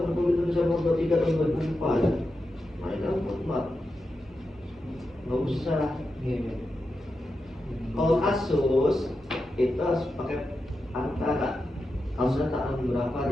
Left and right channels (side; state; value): both; normal; correlation 0.89